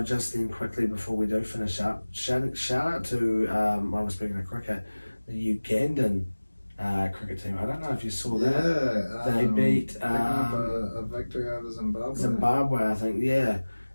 just then quickly before we do finish up, shout out to while we're speaking of cricket, the Ugandan cricket team. I don't know if you saw that. Yeah, they beat a victory over Zimbabwe. Zimbabwe, I think. Yeah.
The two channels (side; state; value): both; inverted; correlation -1.00